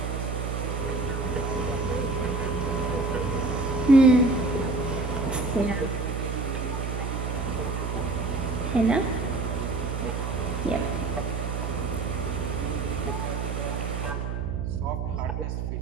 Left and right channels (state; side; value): noise; right; hum, 2 dB below the sound